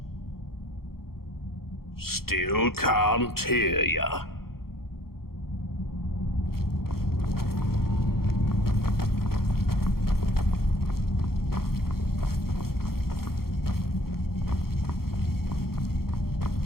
Still can't hear ya.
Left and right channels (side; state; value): right; late; 0.94 ms